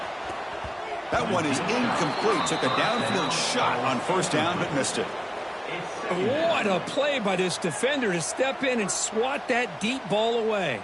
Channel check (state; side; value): identical; both; correlation 1.00